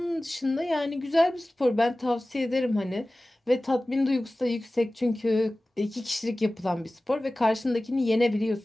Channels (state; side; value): normal; both; correlation 0.97